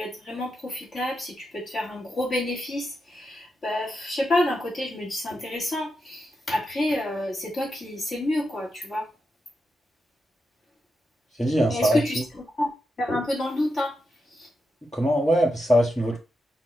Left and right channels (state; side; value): normal; both; correlation 0.87